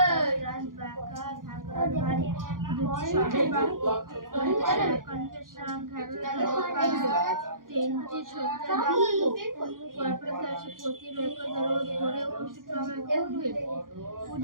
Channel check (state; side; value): late; left; 0.90 ms